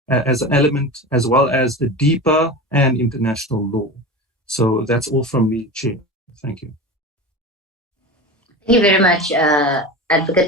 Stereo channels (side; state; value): both; normal; correlation 0.28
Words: as an element, as well as the DIPA and international law. So that's all from me, Chair. Thank you. Thank you very much,